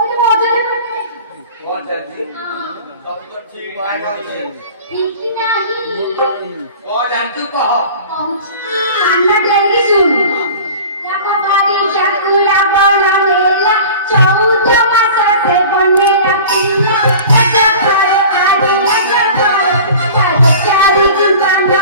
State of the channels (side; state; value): both; inverted; correlation -0.40